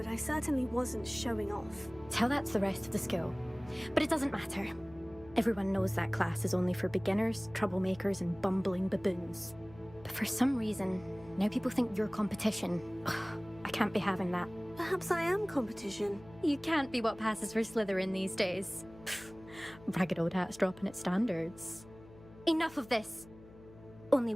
I certainly wasn't showing off. Tell that to the rest of the school. But it doesn't matter. Everyone knows that class is only for beginners, troublemakers, and bumbling baboons. But for some reason, now people think you're competition. Ugh, I can't be having that. Perhaps I am competition. You can't be what passes for Slytherin these days. Pfft, ragged old hat's dropping its standards. Enough of this. Only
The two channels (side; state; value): left; noise; hum, 21 dB below the sound